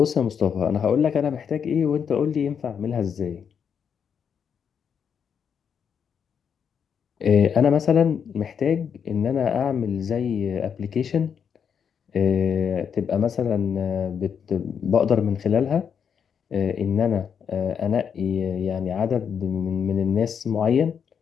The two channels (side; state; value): right; quieter; 7.3 dB